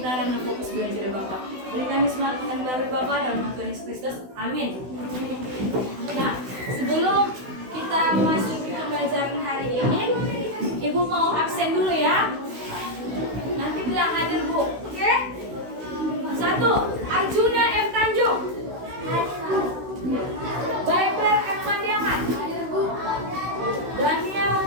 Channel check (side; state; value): left; late; 16 ms